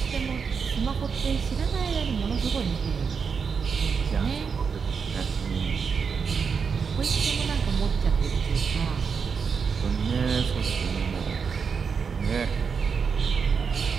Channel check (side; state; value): left; quieter; 5.9 dB